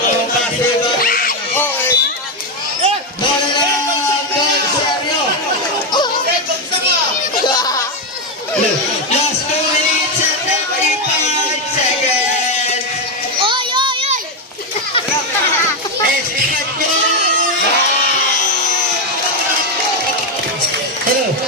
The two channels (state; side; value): normal; both; correlation 0.07